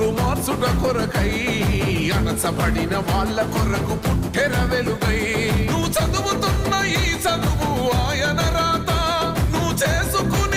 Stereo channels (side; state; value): both; identical; correlation 1.00